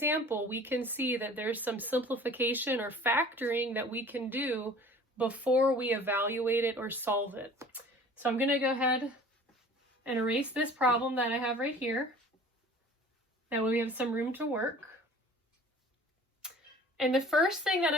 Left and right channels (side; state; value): both; normal; correlation 0.46